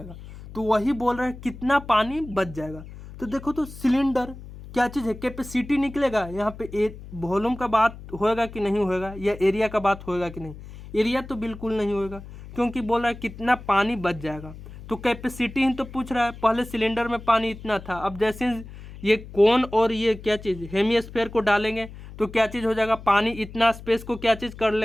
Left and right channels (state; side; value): noise; left; hum, 15 dB below the sound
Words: तो वही बोल रहा है कितना पानी बच जाएगा। तो देखो तो सिलेंडर क्या चीज़ है, कैपेसिटी निकलेगा, यहाँ पे वॉल्यूम का बात होएगा कि नहीं होएगा, या एरिया का बात होएगा कि नहीं, एरिया तो बिल्कुल नहीं होएगा, क्योंकि बोल रहा है कितना पानी बच जाएगा। तो कैपेसिटी ही तो पूछ रहा है, पहले सिलेंडर में पानी इतना था, अब जैसे ये कोन और ये क्या चीज़ हेमिस्फीयर को डालेंगे तो क्या चीज़ हो जाएगा, पानी इतना स्पेस को क्या चीज़ कर